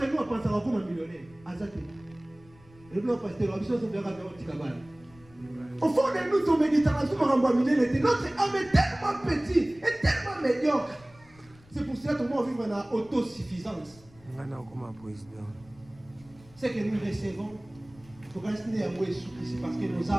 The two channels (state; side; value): noise; left; rumble, 25 dB below the sound